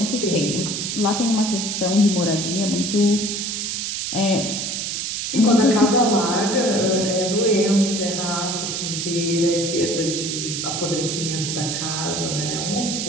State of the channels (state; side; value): noise; right; hiss, 3 dB below the sound